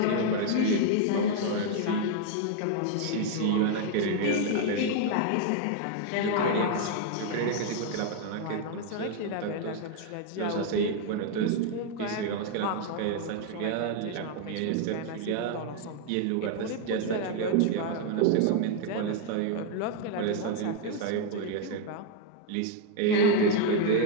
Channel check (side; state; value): both; different; correlation 0.00